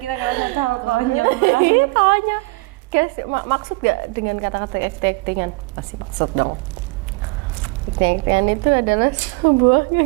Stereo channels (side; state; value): left; quieter; 25.7 dB